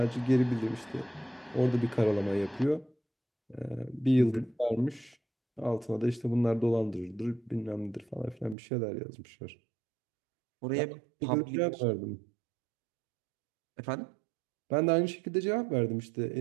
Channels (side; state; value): left; drops out; at 8.6 s